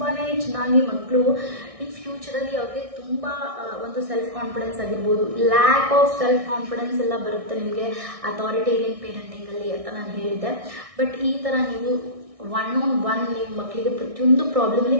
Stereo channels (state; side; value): late; left; 1.6 ms